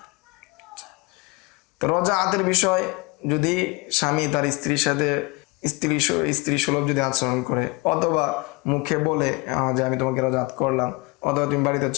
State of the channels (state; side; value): quieter; right; 25.8 dB